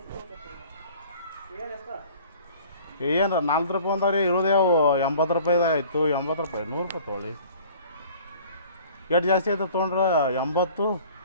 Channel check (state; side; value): inverted; both; correlation -0.49